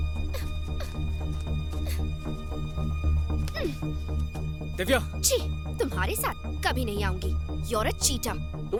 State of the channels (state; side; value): identical; both; correlation 1.00